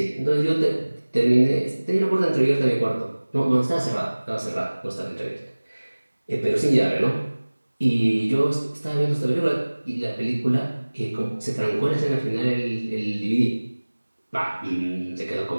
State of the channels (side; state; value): both; inverted; correlation -1.00